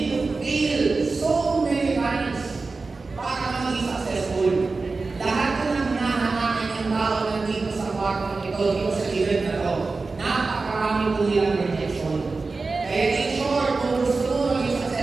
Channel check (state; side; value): quieter; left; 3.9 dB